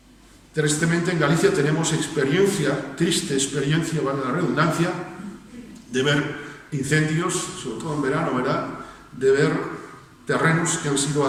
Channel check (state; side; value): identical; both; correlation 1.00